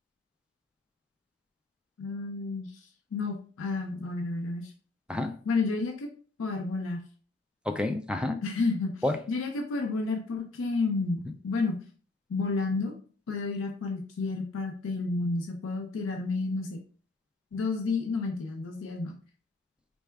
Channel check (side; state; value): right; quieter; 3.1 dB